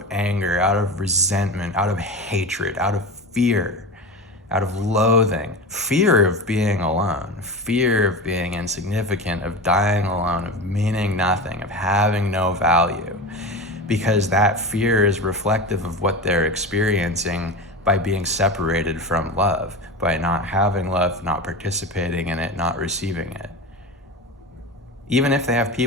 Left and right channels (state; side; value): normal; both; correlation 0.27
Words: anger, out of resentment, out of hatred, out of fear, out of loathing, fear of being alone, fear of being insignificant, of dying alone, of meaning nothing, of having no value, because that fear is reflective of what they're experiencing by being separated from love, by not having love, not participating in it, not receiving it. Even if they have